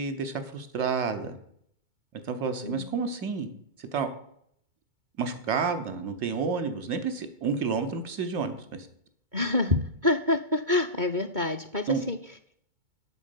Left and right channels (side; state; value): left; late; 2.2 ms